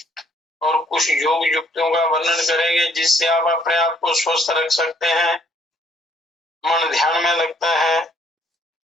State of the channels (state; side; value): normal; both; correlation 0.64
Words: और कुछ योग युक्तियों का वर्णन करेंगे, जिससे आप अपने आप को स्वस्थ रख सकते हैं, मन ध्यान में लगता है